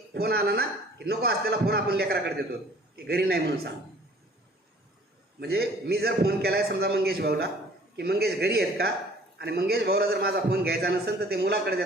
फोन आला ना की नको असलेला फोन आपण लेकराकडे देतो की घरी नाही म्हणून सांग. म्हणजे मी जर फोन केला आहे समजा मंगेश भाऊला की मंगेश घरी आहेत का, आणि मंगेश भाऊला जर माझा फोन घ्यायचा नसेल तर ते मुलाकडे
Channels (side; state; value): both; normal; correlation 0.53